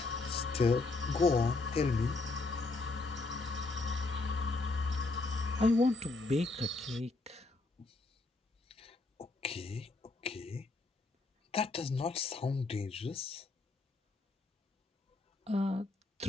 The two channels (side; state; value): right; quieter; 3.3 dB